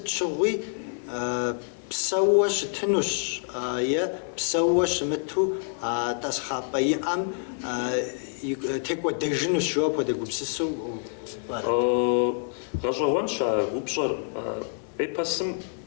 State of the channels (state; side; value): silent; right; digital silence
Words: щыгъуи псэуэ щытынущ, е псэуэ щымыту тӀасхъапӀэ иӀэм текӀуэдэжынущ, жо апхуэдэ гупсысэу пӀэрэ? Гъэщӏэгъуэнщ а упщӏэр. Эпосым,